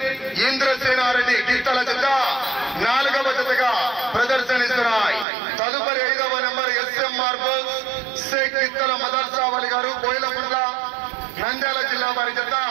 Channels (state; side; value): drops out; left; at 5.2 s